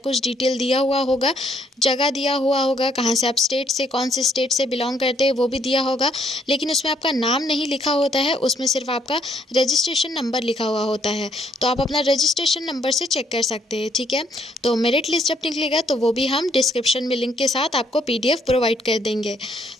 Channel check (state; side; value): normal; both; correlation 0.68